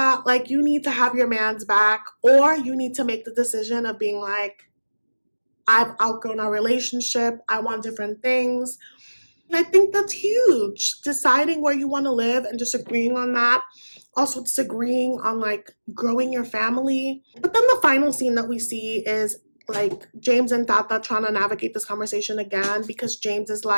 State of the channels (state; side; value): inverted; both; correlation -1.00